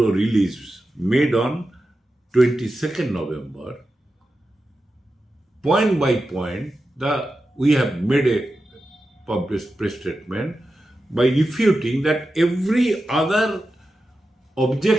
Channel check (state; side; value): normal; both; correlation 0.91